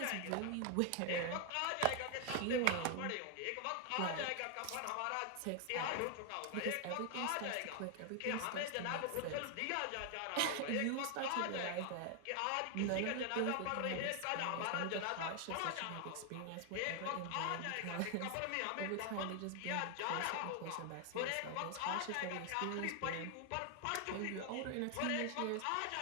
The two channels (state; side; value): different; both; correlation 0.00